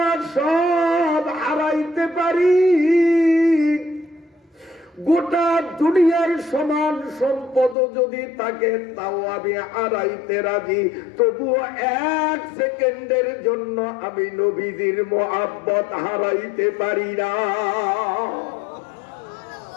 সব হারাইতে পারি, গোটা দুনিয়ার সমান সম্পদ যদি থাকে তাও আমি হারাইতে রাজি, তবুও 1 সেকেন্ডের জন্য আমি নবীজির মহব্বত হারাইতে পারি না।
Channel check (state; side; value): drops out; right; at 7.8 s